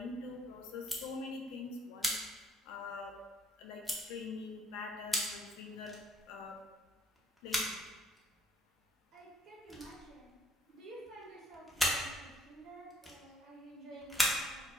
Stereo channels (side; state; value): both; normal; correlation 0.64